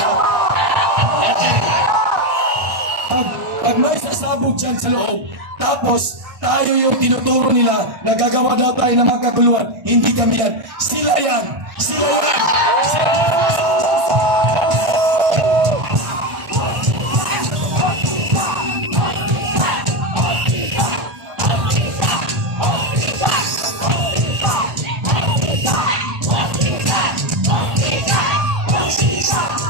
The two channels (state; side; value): late; left; 1.6 ms